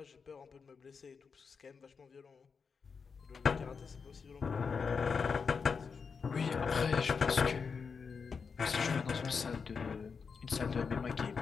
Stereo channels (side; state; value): right; quieter; 5.6 dB